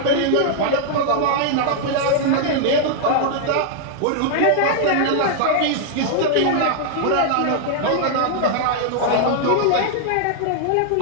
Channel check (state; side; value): different; both; correlation 0.00